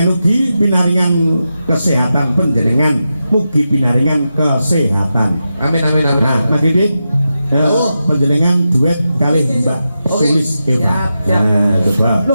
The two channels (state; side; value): inverted; both; correlation -0.89